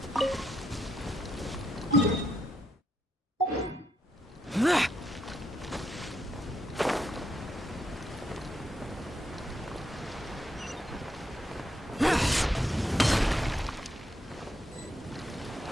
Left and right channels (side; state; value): both; normal; correlation 0.78